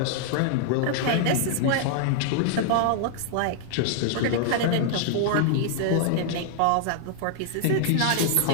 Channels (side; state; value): both; different; correlation -0.01